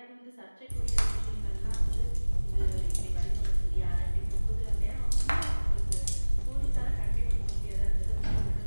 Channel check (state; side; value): inverted; both; correlation -1.00